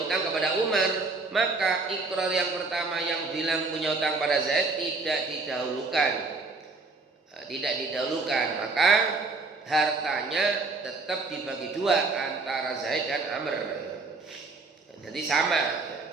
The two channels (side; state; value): left; quieter; 3.8 dB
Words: kepada Umar maka ikrar yang pertama yang bilang punya hutang pada Zaid tidak didahulukan maka hartanya tetap dibagi dua antara Zaid dan Amr jadi